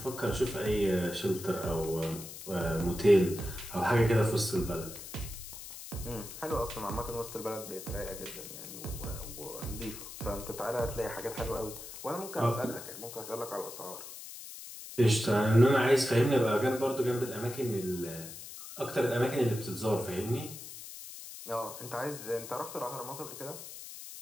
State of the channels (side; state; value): left; noise; hiss, 12 dB below the sound